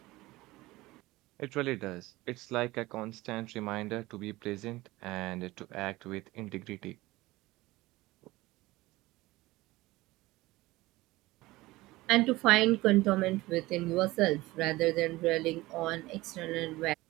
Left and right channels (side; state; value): left; quieter; 19.4 dB